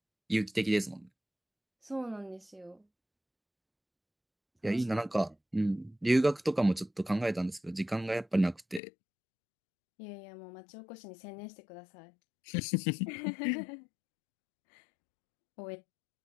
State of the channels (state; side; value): drops out; right; at 8.8 s